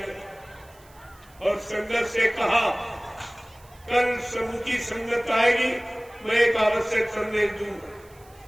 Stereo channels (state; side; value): noise; right; hiss, 27 dB below the sound